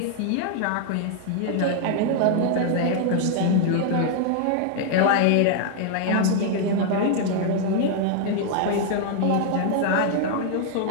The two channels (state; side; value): different; both; correlation 0.00